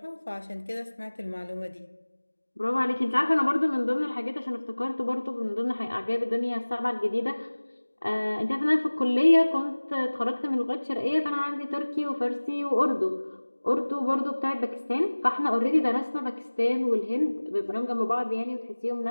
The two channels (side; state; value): both; inverted; correlation -1.00